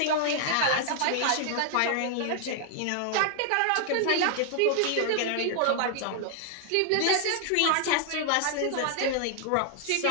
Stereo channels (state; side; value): different; both; correlation 0.00